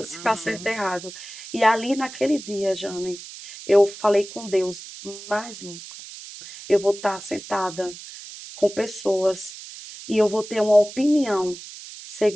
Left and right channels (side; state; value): right; noise; hiss, 14 dB below the sound